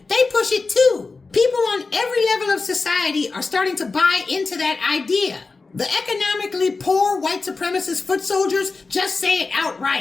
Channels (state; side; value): quieter; right; 4.0 dB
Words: They push it too. People on every level of society are starting to buy into that idea. The economically poor white supremacist foot soldiers just say it